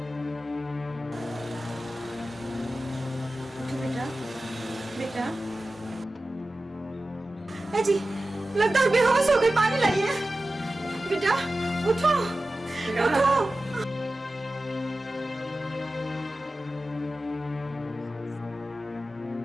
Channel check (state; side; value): normal; both; correlation 0.95